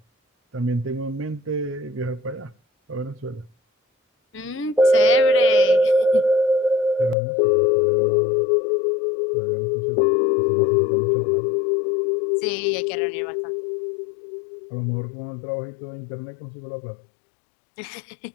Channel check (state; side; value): drops out; right; at 7.2 s